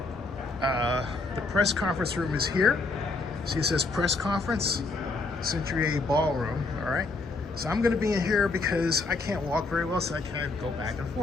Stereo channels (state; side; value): quieter; right; 3.5 dB